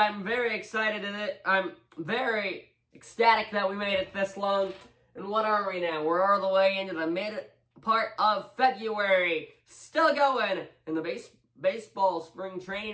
very excited in it. I'm very ecstatic that we made it this long. And what are we now? We're all the way into the mid part of February. Still going. And the baseball spring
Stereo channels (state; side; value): identical; both; correlation 1.00